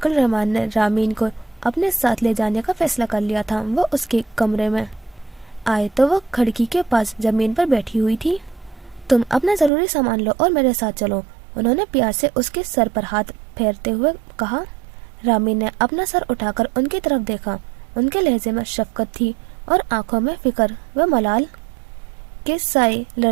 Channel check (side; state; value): left; drops out; at 9.7 s